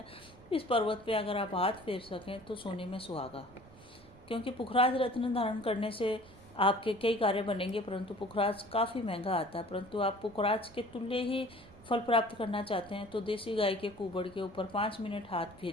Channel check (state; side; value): noise; right; rumble, 22 dB below the sound